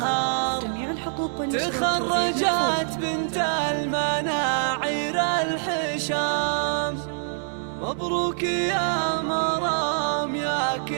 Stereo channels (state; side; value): silent; left; digital silence